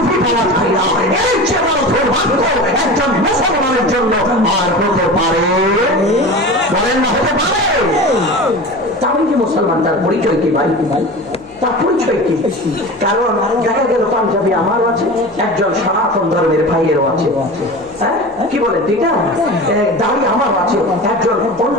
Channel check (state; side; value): noise; left; hum, 28 dB below the sound